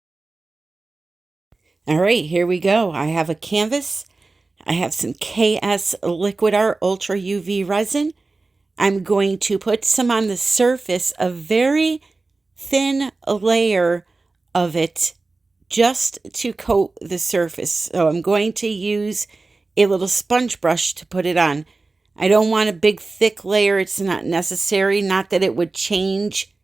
All right, here we go. I have a canvas. I have some KS Liquid Art Ultra UV resin. I'm going to put some on the surface, a very thin layer of it, just to coat the surface. So I'm going to use a little sponge brush to put it on. I don't want a big thick layer. It's not necessary. Not that it would change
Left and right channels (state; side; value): quieter; left; 3.5 dB